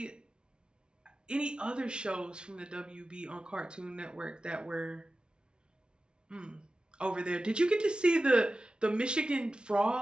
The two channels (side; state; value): left; late; 0.055 ms